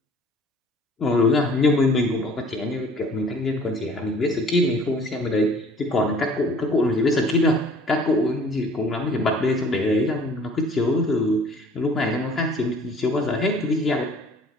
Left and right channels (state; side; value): normal; both; correlation 0.52